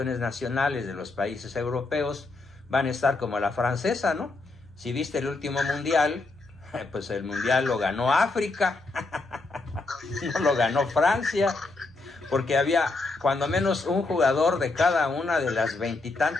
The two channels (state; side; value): quieter; right; 3.4 dB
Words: nacionales de los países europeos van a estar como la francesa, ¿no? Si viste el último mundial, pues el mundial lo ganó África, no lo ganó Francia, porque había cuando menos un jugador de cada una de las 20 y